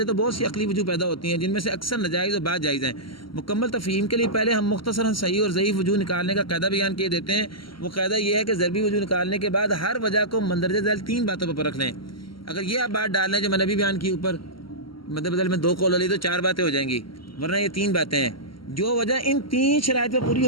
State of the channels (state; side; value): late; right; 0.74 ms